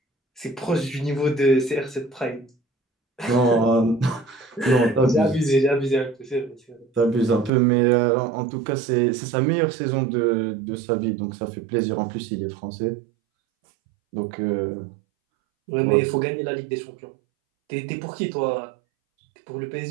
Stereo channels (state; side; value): drops out; left; at 7.5 s